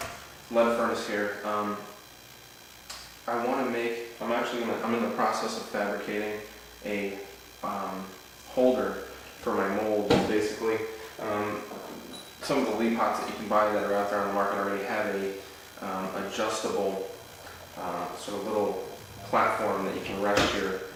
furnace here. I'm in the process of fabricating a holder for my molds. Basically, some of the lead pots that you can buy that are out there on the market already have a adjustable sort of little platform that you can rest your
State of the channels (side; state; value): both; identical; correlation 1.00